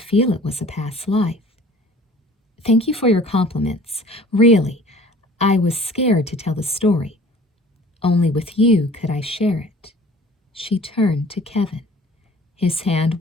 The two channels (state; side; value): normal; both; correlation 0.49